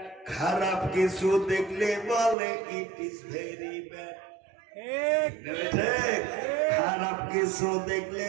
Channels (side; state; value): left; drops out; at 2.4 s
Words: খারাপ কিছু দেখলে বলে ইট ইজ ভেরি ব্যাড। ঠিক। খারাপ কিছু দেখলে